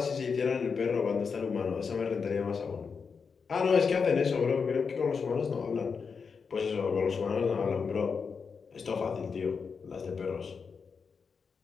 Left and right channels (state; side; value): quieter; right; 5.6 dB